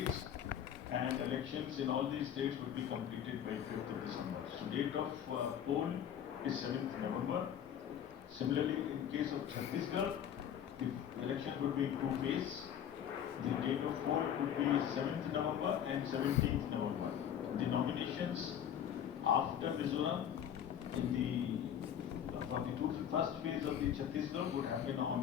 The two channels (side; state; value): right; quieter; 9.4 dB